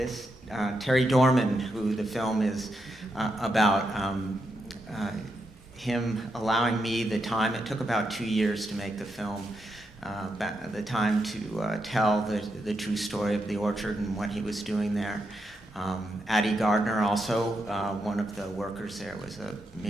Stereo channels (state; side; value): normal; both; correlation 0.83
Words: Terry Dorman, who the film is about, him allowing me the time. It took about 2 years to make the film, the time to tell the true story of the orchard and what he was doing there. Addie Gardner, also one of the workers there, was a